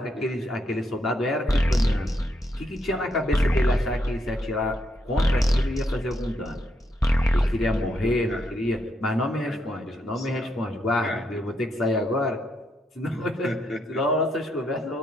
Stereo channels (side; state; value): both; normal; correlation 0.78